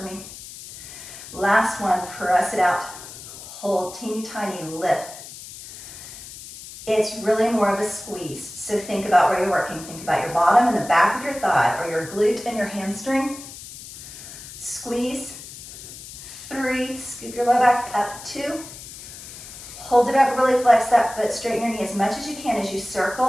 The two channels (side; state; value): left; noise; hiss, 14 dB below the sound